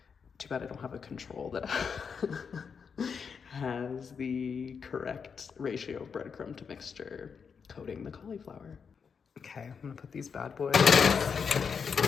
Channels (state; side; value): quieter; right; 6.2 dB